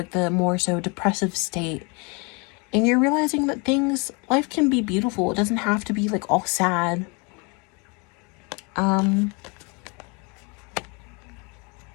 the more so depressive state, and you're realizing that life can be beautiful. It doesn't have to be like all sad. I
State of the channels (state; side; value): quieter; right; 31.2 dB